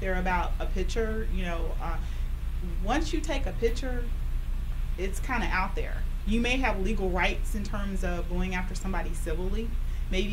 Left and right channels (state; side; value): identical; both; correlation 1.00